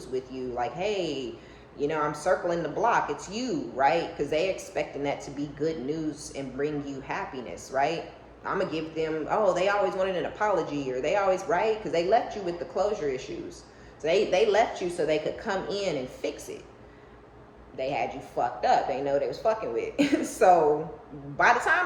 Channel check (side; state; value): both; identical; correlation 1.00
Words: with you. Like, hey, you know, I'm circling the block. It's you, right? Because they expecting that to be good news and bring you happiness, right? I'm going to give them, oh, they always wanted an apology, or they always, right? Because they left you with the closure issues. So they left you so they could come in and fix it. They had you fucked up. They know they was fucking with. So by the